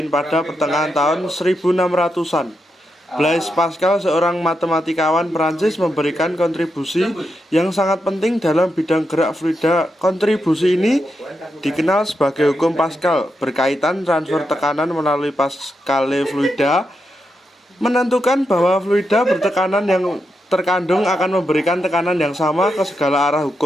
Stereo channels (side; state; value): both; normal; correlation 0.85